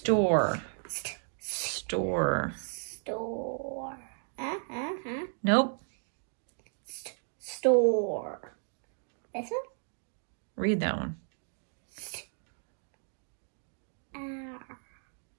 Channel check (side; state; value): left; silent; 55 dB below the other